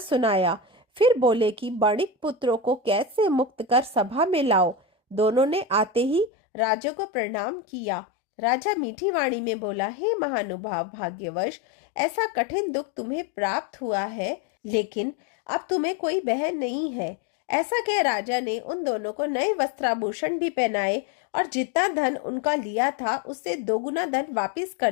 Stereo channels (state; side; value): drops out; right; at 6.3 s